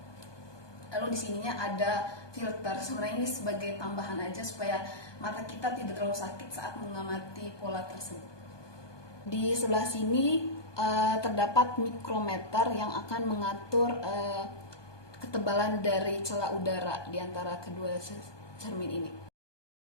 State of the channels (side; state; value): right; late; 1.2 ms